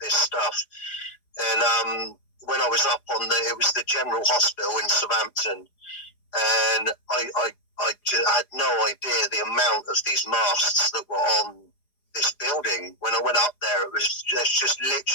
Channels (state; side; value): late; right; 4.9 ms